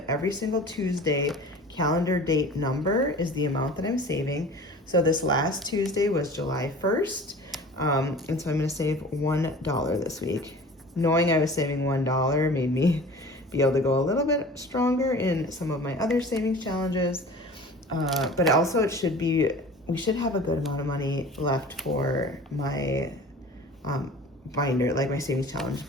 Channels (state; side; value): normal; both; correlation 0.41